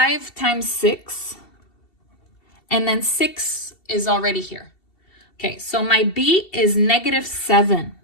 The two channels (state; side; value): late; right; 2.7 ms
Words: times 6, and then 6 is already here. Okay, so my b is negative 7.